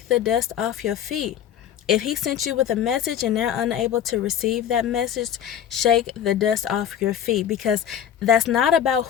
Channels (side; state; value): right; quieter; 9.6 dB